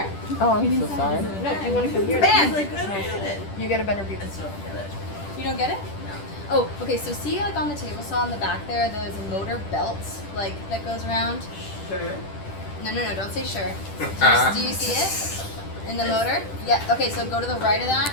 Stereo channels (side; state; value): right; late; 10 ms